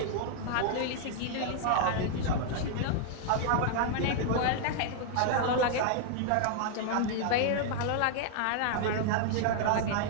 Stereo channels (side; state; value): both; different; correlation 0.00